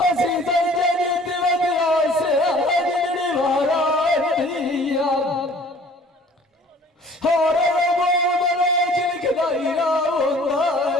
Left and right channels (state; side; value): normal; both; correlation 0.52